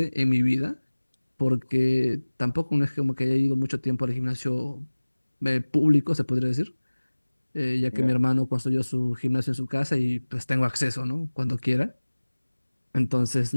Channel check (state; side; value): inverted; both; correlation -1.00